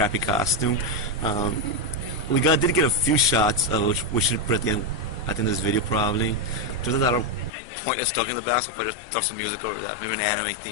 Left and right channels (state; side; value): drops out; right; at 7.5 s